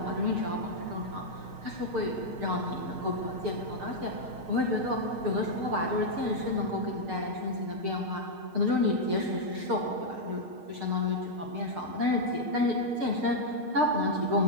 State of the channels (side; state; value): left; late; 6.5 ms